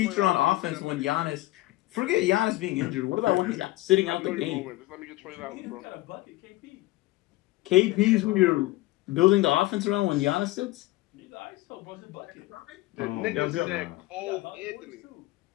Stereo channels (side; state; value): right; quieter; 18.5 dB